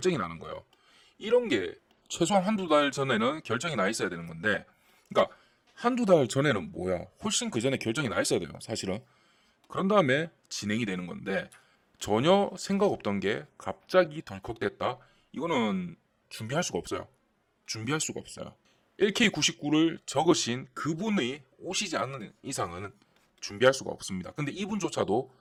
나는 거예요. 이런 게 최소한 한두 달 전에는 결정이 나 있어야 되는 건데, 그러니까 한두 달 전에는 뭐야, 훨씬 그 전에 결정이 나 있어야 돼요, 사실은. 그런 다음에 진행이 되는 건데, 전혀 생각 없던 게 갑자기 덜컥됐다. 이거는 준비할 수가 없어요. 준비할 수가 없어요. LK99를 적으신 그분이 오시지 않는 이상은 준비할 수가 없습니다. 근데 이분조차도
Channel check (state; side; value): identical; both; correlation 1.00